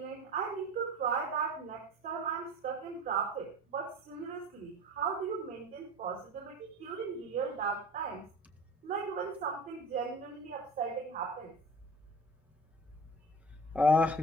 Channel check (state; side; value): normal; both; correlation 0.38